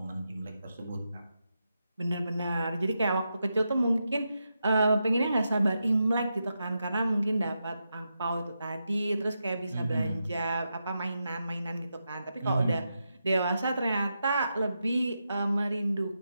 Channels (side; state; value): both; inverted; correlation -0.86